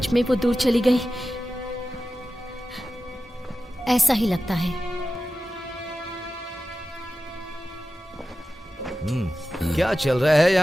में वो दूर चली गई? ऐसा ही लगता है। क्या चल रहा है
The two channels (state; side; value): normal; both; correlation 0.94